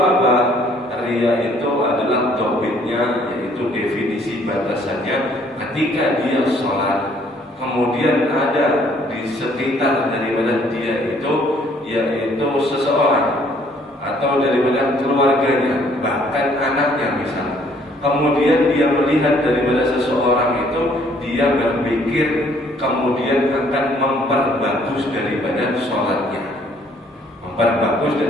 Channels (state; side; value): normal; both; correlation 0.62